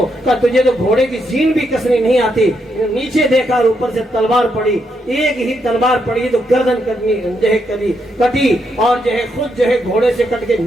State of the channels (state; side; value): normal; both; correlation 0.79